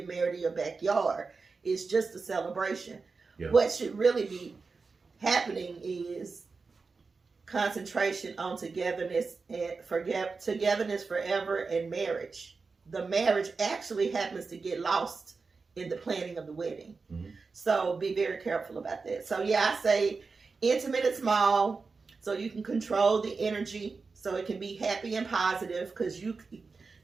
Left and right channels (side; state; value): left; quieter; 4.4 dB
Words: married in your backyard. It's just a celebration. Yeah. What should really be happening is concentration on togetherness forever and marriage. The marriage actually happens to get lost in the planning of the wedding. Mm-hmm. So be very careful about that. So I say intimate and small, so you can control the energy, so it can be happy and positive, because you